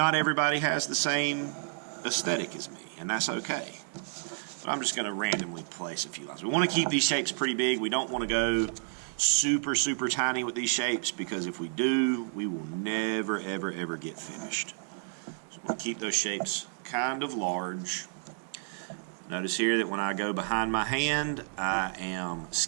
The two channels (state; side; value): silent; left; digital silence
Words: everybody has the same aesthetic as me, and that's okay. But I'm just going to randomly place a few lines. We want to keep these shapes pretty big. We don't want to go super, super tiny with these shapes because if we do, we will never, ever, ever get finished. So I'm going to keep those shapes kind of large. Notice here that when I go behind my hand, I am